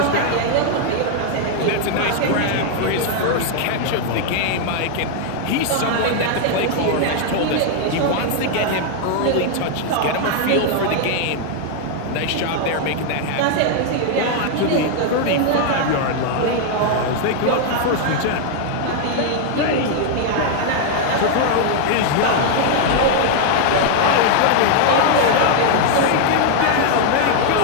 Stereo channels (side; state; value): both; different; correlation 0.00